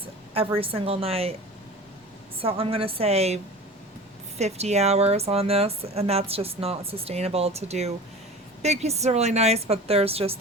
every single night. So I'm going to say 50 hours on this, and that's just not sustainable to do. Big pieces are really nice, but they're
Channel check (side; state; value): both; normal; correlation 0.37